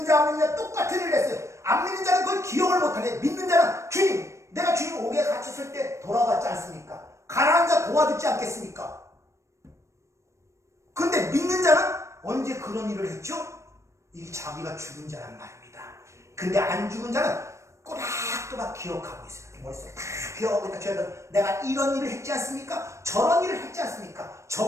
자 안 믿는 자 똑같은 일을 했어요. 안 믿는 자는 그걸 기억을 못하네. 믿는 자는 주님 내가 주님 옥에 갇혔을 때 돌아왔지 않습니까? 가난한 자 도와주지 않겠습니까? 근데 믿는 자는 언제 그런 일을 했죠? 이게 자기가 죽은 자란 말입니다. 근데 안 죽은 자는 꼬박꼬박 기억하고 있어요. 머릿속에 다 기억하고 있다. 내가 이런 일을 했지 않습니까? 저런 일을 했지 않습니까?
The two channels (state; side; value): late; left; 0.14 ms